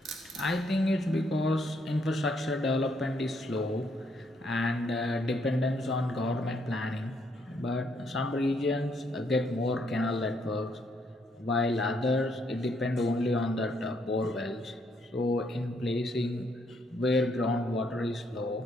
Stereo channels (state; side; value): normal; both; correlation 0.72